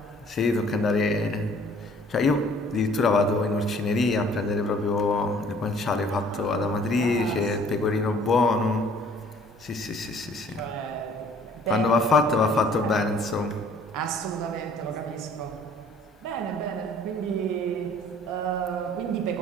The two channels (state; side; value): normal; both; correlation 0.55